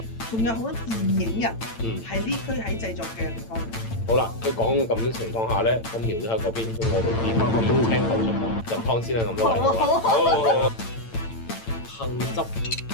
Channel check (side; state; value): right; late; 8.9 ms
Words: 仲有好多電影人嗯，係呢區喺製作嘅地方。好啦，佢講咁嘅情況下咧，咁苗都喺嗰邊，咁我哋邊聽口述入湯先啦，咁多位。好。杏汁